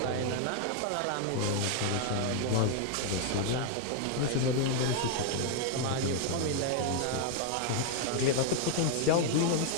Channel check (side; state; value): both; different; correlation 0.00